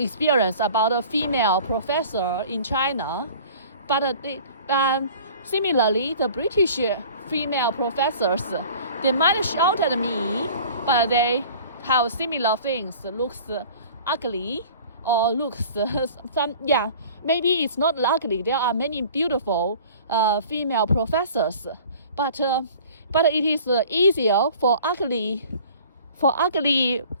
about a female professor in China. But similarly, the British female professors, they might shout at me, but they have similar things, looks ugly or looks maybe it's not ugly. There are many beautiful female professors, but it is easier for ugly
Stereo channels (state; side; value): inverted; both; correlation -0.46